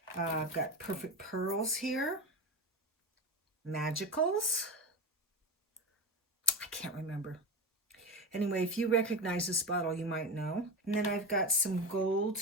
I've got Perfect Pearls here. Magicals. I can't remember. Anyway, if you recognize this bottle, you might know. And then I've got some gold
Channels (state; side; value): normal; both; correlation 0.23